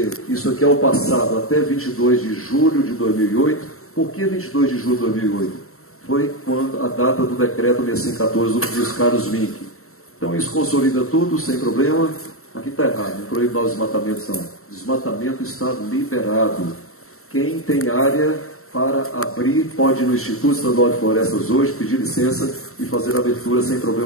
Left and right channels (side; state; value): right; late; 0.63 ms